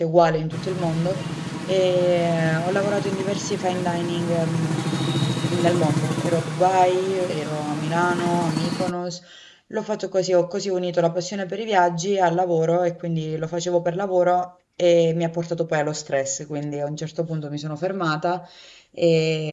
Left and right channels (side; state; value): both; identical; correlation 1.00